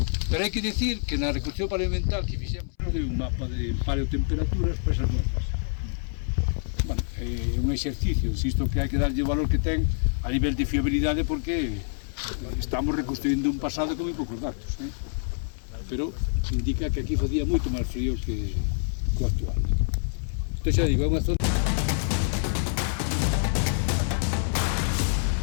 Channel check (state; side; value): silent; right; 60 dB below the other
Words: Pero hai que dicir que na reconstrucción paleoambiental que fixemos de un mapa de paleotemperaturas para esas zonas. Bueno, é un exercicio, insisto que hai que darlle o valor que ten a nivel de fiabilidade, porque estamos reconstruindo un pasado con moi poucos datos, pero indica que aquí facía moito máis frío que o actual. Entón xa digo, é unha zona